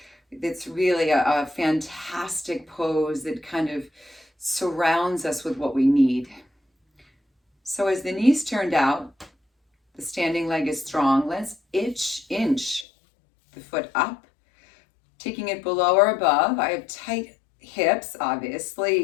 it's really a fantastic pose that kind of surrounds us with what we need. So as the knees turned out, the standing leg is strong. Let's inch the foot up, taking it below or above. I have tight hips, obviously,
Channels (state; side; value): drops out; right; at 12.9 s